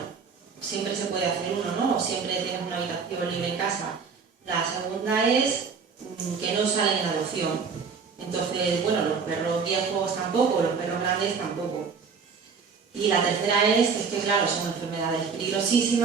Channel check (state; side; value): quieter; left; 5.6 dB